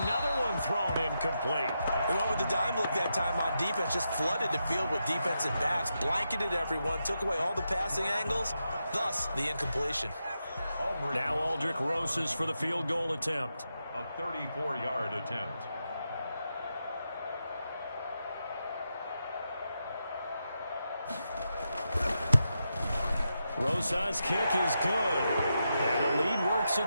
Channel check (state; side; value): inverted; both; correlation -0.86